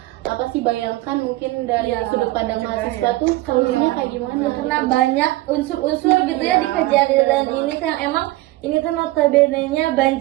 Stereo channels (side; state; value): left; quieter; 18.6 dB